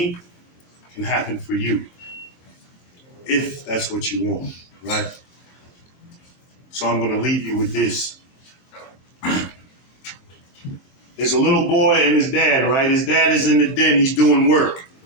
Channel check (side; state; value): right; late; 23 ms